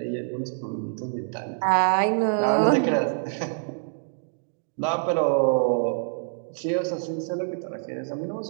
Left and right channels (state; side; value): silent; left; digital silence